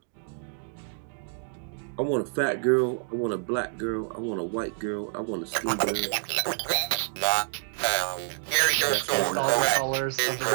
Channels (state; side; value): silent; left; 60 dB below the other